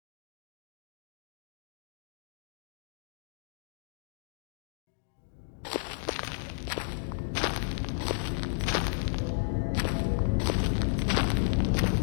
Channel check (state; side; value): silent; right; digital silence